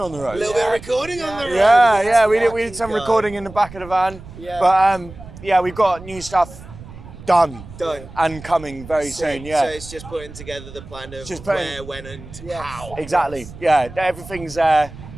the road. A little bit of recording on the road? Yeah, we did some recording in the back of the van. Yeah. But yeah, we've got new stuff done and coming very soon. So it's just putting together the plan of where, when, and how. Exactly. Yeah, everything's there.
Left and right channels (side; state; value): right; noise; rumble, 16 dB below the sound